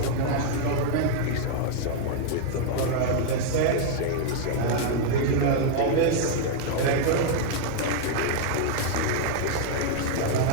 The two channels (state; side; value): different; both; correlation 0.00